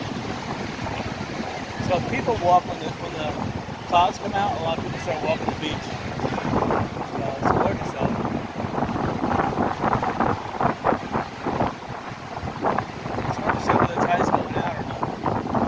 So people walk when the clouds come out. A lot of people start walking the beach. So it's gorgeous out. It's hard to see whether the tide's going out or not.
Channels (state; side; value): identical; both; correlation 1.00